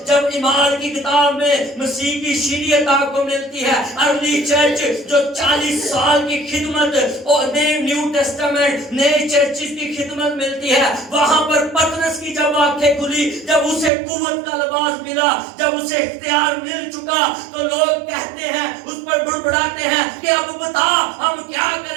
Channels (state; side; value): drops out; left; at 13.9 s